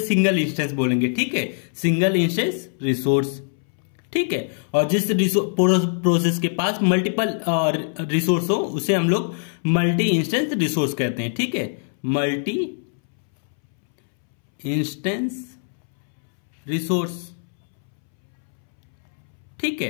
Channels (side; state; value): right; silent; 64 dB below the other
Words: सिंगल इंस्टेंस बोलेंगे। ठीक है, सिंगल इंस्टेंस रिसोर्स। ठीक है, और जिस प्रोसेस के पास मल्टीपल रिसोर्स हो उसे हम लोग मल्टी इंस्टेंस रिसोर्स कहते हैं। ठीक है, मल्टी इंस्टेंस रिसोर्स। ठीक